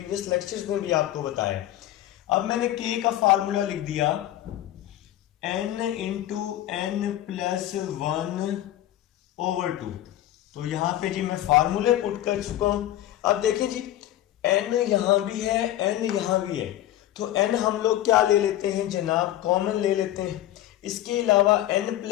लेक्चर्स में भी आपको बताया। अब मैंने k का फार्मूला लिख दिया, n इंटू n + 1/2। तो यहां पे जी मैं फार्मूले पुट कर चुका हूं। अब देखें जी, n यहां भी है, n यहां भी है, तो n हम लोग क्या ले लेते हैं जनाब, कॉमन ले लेते हैं। इसके अलावा n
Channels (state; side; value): quieter; right; 13.5 dB